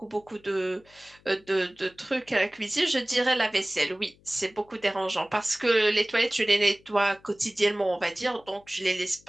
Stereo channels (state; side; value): noise; left; hum, 30 dB below the sound